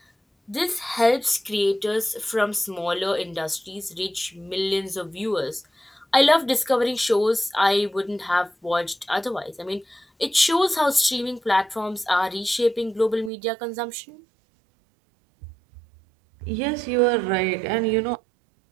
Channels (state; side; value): drops out; left; at 13.3 s